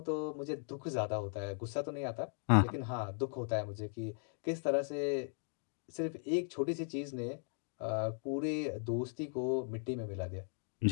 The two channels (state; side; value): silent; right; 53 dB below the other